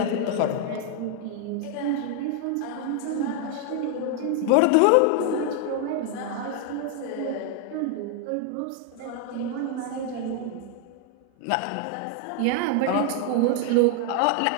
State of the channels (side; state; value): both; different; correlation 0.00